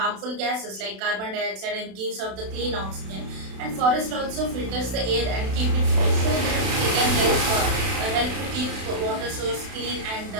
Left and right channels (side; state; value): left; late; 32 ms